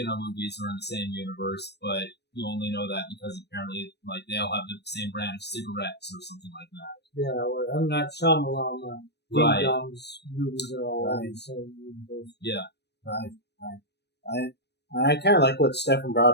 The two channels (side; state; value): right; late; 0.49 ms